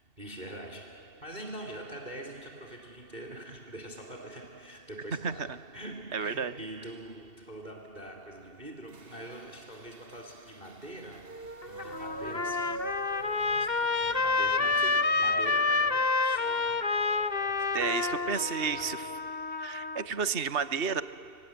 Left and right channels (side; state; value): left; late; 2.7 ms